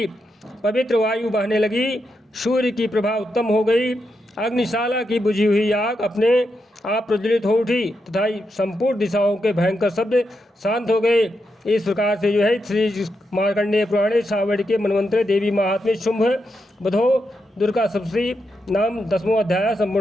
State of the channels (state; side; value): normal; both; correlation 0.84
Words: पवित्र वायु बहने लगी। सूर्य की प्रभा उत्तम हो गई। अग्निशाला की बुझी हुई आग अपने आप प्रज्वलित हो उठी तथा संपूर्ण दिशाओं के भयंकर शब्द शांत हो गए। इस प्रकार से जो है श्री मार्कंडेय पुराणे सावड़ के मनवंतरे देवी महात्म्य शुंभ बधो दुर्गा सप्तशती नाम 10वां अध्याय